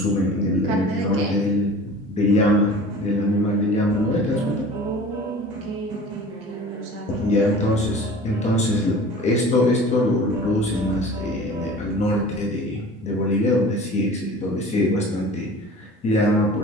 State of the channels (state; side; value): normal; both; correlation 0.41